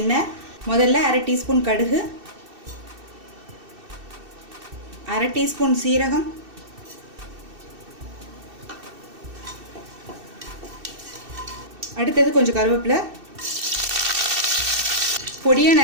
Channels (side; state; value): left; late; 2.7 ms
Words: எண்ணெய், முதல்ல அரை டீஸ்பூன் கடுகு, அரை டீஸ்பூன் சீரகம், அடுத்தது கொஞ்சம் கருவேப்பிலை, பொடியாக